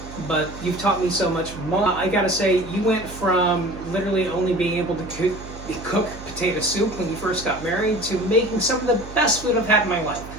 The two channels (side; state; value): right; noise; hum, 14 dB below the sound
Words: but you've taught me so much more. I gotta say, you went from literally only being able to cook potato soup when you first got married to making some of the best food I've had in my life.